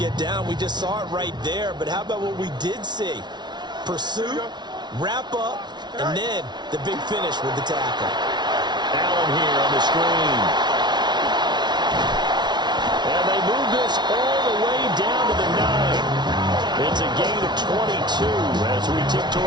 down. We just saw it right there. But how about what we did see? Pursuit, wrap up, and then the big finish with the tackle. Allen here on the screen. And they move this all the way down to the 9. It's a gain of 22 as we tick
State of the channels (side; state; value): left; late; 0.20 ms